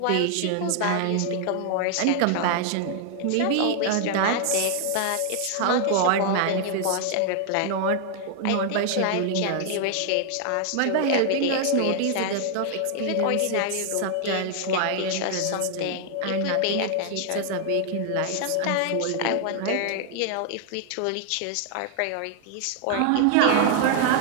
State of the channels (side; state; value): both; different; correlation 0.00